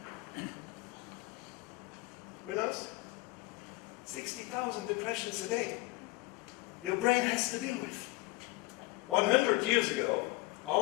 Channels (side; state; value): right; quieter; 22.0 dB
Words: Who knows? 60,000 impressions a day. Your brain has to deal with. 100 years ago,